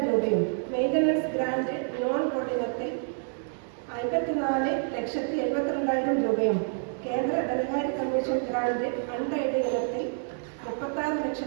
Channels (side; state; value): left; silent; 59 dB below the other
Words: രൂപയും, മെയിൻ്റനൻസ് ഗ്രാന്റ് നോൺ കോർഡിനത്തിൽ 54,72,000 രൂപയും, കേന്ദ്ര ധനകാര്യ കമ്മീഷൻ ഗ്രാന്റ് അൺഎയ്ഡഡ് ഇനത്തിൽ